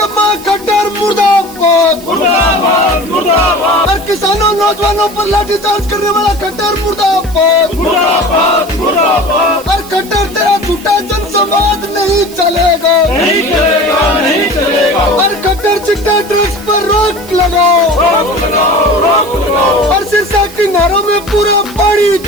खट्टर मुर्दाबाद मुर्दाबाद मुर्दाबाद और किसानों नौजवानों पर लाठीचार्ज करने वाला खट्टर मुर्दाबाद मुर्दाबाद मुर्दाबाद। और खट्टर तेरा झूठा जनसंवाद नहीं चलेगा नहीं चलेगा नहीं चलेगा। और खट्टर चिट्टा ड्रग्स पर रोक लगाओ रोक लगाओ रोक लगाओ। और सिरसा की नहरों में पूरा पानी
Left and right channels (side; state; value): right; noise; hiss, 18 dB below the sound